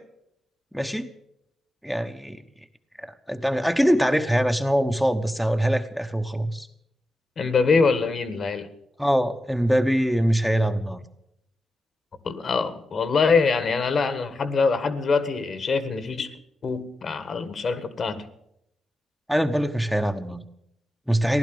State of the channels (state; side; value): normal; both; correlation 0.90